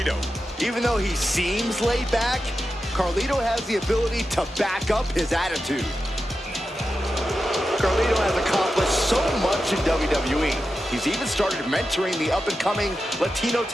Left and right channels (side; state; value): both; normal; correlation 0.91